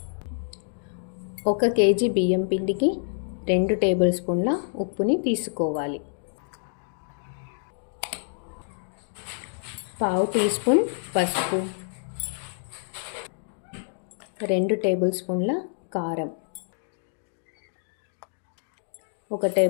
1 కేజీ బియ్యం పిండికి 2 టేబుల్ స్పూన్ల ఉప్పుని తీసుకోవాలి. 1/2 టీ స్పూన్ పసుపు, 2 టేబుల్ స్పూన్ల కారం, 1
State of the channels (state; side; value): silent; right; digital silence